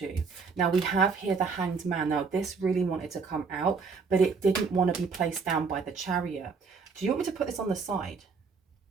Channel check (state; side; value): quieter; left; 5.0 dB